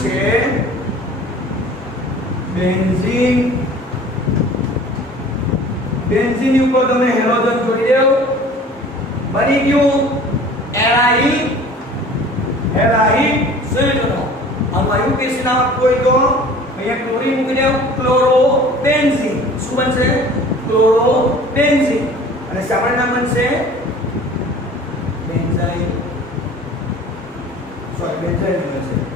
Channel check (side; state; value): both; normal; correlation 0.46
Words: છે બેન્ઝીન. બેન્ઝીન ઉપર તમે હેલોજન જોડી દેવ, બની ગયું એરાઇલ હેલાઇડ સંયોજનો. આનું આયુકેસ નામ કોઈ તો અહીંયા ક્લોરીન મૂકી દેવ, ક્લોરોબેન્ઝીન. શું બનશે? ક્લોરોબેન્ઝીન. અને સામાન્ય નામ બનશે બેન્ઝાઇલ. બેન્ઝાઇલ બનશે